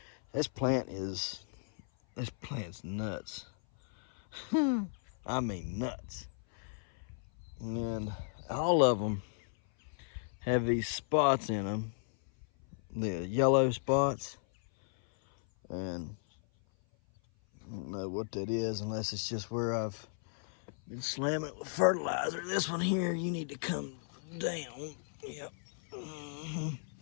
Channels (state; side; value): silent; right; 54 dB below the other